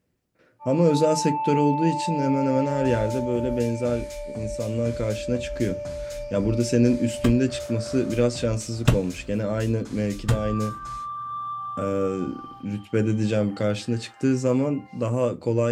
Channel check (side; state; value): both; identical; correlation 1.00